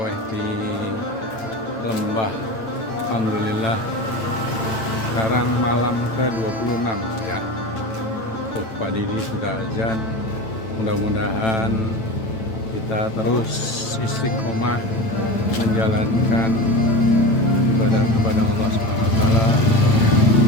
di lembah. Alhamdulillah. Sekarang malam ke-26 ya. Tuh Pak Didi sudah azan. Mudah-mudahan kita terus istiqomah menjalankan ibadah kepada Allah SWT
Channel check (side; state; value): right; late; 9.0 ms